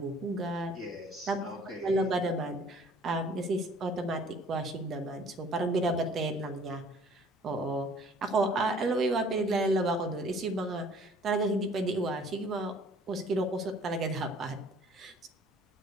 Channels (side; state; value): both; normal; correlation 0.54